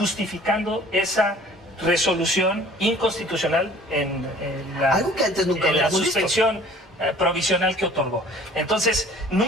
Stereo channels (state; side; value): normal; both; correlation 0.50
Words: esa resolución inconstitucional en la, Algo que antes nunca en la habíamos visto. suspensión provisional que otorgó. Entonces,